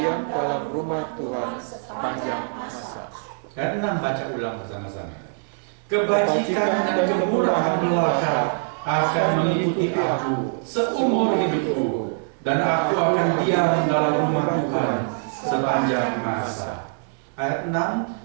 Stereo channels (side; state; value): left; silent; digital silence